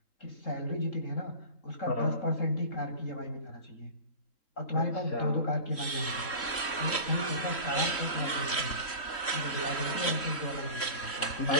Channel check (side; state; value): right; late; 3.1 ms